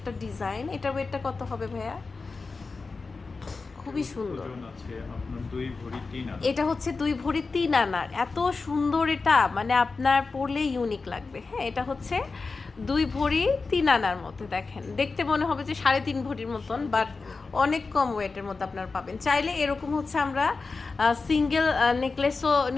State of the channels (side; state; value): right; quieter; 4.2 dB